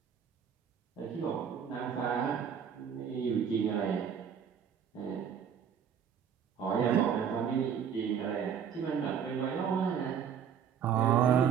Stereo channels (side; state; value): left; quieter; 7.9 dB